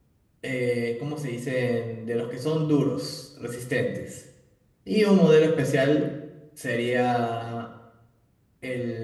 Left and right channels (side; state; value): both; identical; correlation 1.00